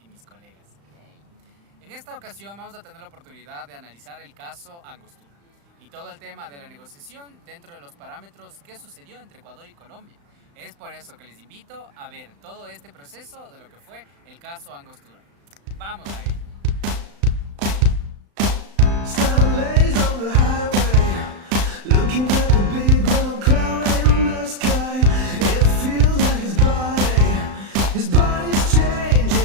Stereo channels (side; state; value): left; late; 35 ms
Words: y mis colegas. En esta ocasión vamos a tener la oportunidad de analizar el caso Angostura y todo el tema de la negociación dentro de los parámetros que sucedió entre Ecuador y Colombia. Es por eso que les invito a ver todo este proceso de lo que fue el caso Angostura. ¡Vamos a ello!